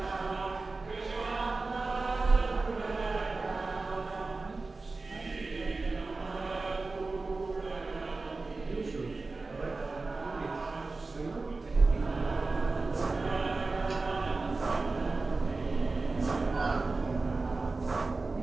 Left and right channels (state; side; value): quieter; left; 3.6 dB